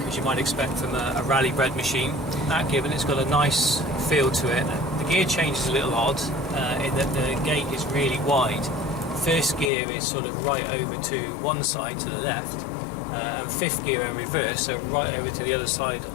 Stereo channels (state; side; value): drops out; right; at 9.7 s